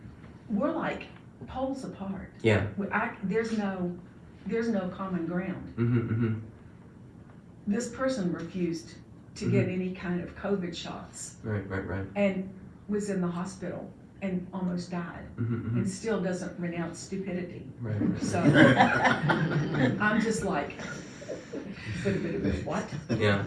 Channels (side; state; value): both; identical; correlation 1.00